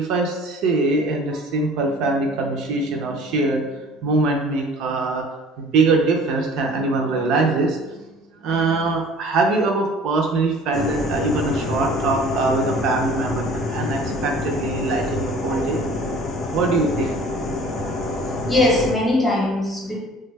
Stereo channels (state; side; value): normal; both; correlation 0.48